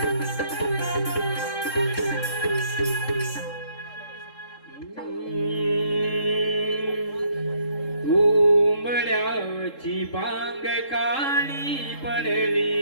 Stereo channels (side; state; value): right; late; 3.7 ms